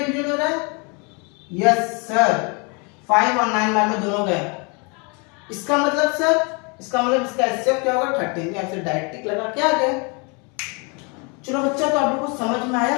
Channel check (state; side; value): quieter; right; 32.2 dB